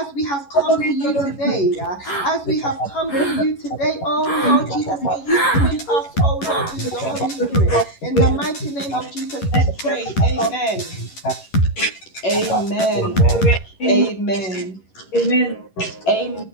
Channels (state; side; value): late; right; 11 ms